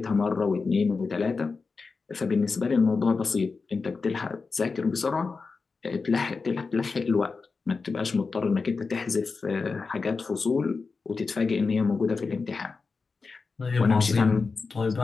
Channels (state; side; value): quieter; right; 4.5 dB